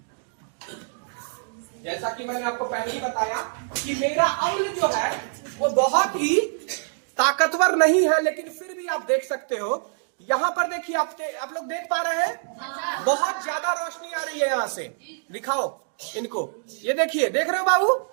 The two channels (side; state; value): left; silent; digital silence